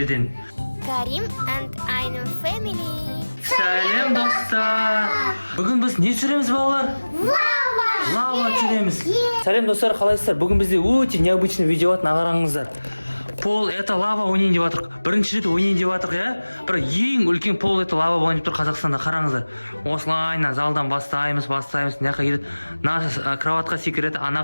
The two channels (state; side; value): inverted; both; correlation -1.00